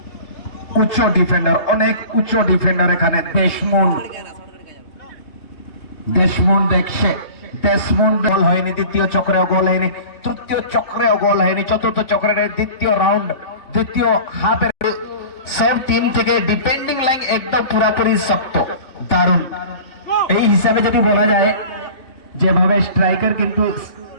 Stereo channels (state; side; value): late; right; 3.6 ms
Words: উচ্চ ডিফেন্ডার অনেক উচ্চ ডিফেন্ডার এখানে দেশমুন দেখছে দেশমুন গোল হয়নি দ্বিতীয় চক্রেও গোল হয়নি তৃতীয় চক্রেও গোল হয়নি চতুর্থ চক্রের দ্বিতীয় রাউন্ড দ্বিতীয় হাফের সব টিম থেকে ডিফেন্ডিং লাইন একদম পুরোপুরি শক্ত দারুণ এই হিসাবে যদি বলা যায় যেভাবে স্ট্রাইকার কিন্তু